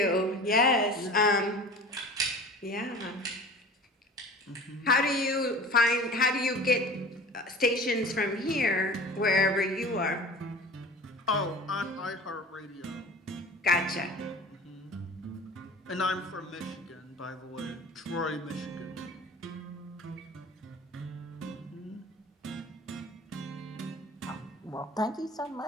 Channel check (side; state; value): both; normal; correlation 0.40